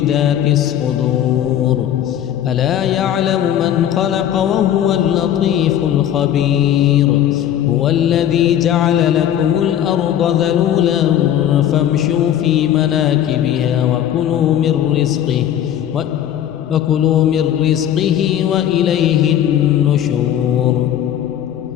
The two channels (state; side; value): quieter; right; 10.7 dB